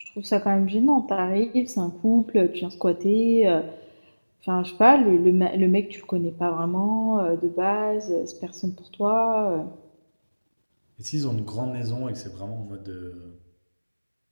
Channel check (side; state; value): both; inverted; correlation -1.00